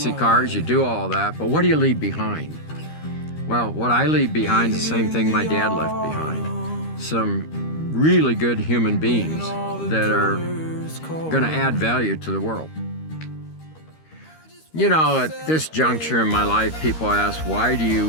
cars, you do all that, but what do you leave behind? Well, what I leave behind is the same thing my dad left behind. Some really good human beings that are going to add value to the world. You know, at this juncture in my life, people ask, why do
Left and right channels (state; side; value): late; right; 13 ms